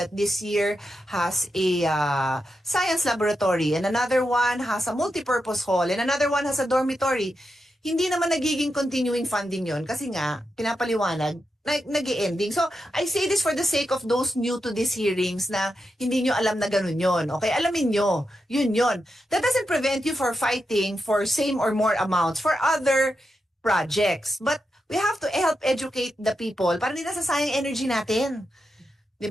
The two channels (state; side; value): normal; both; correlation 0.87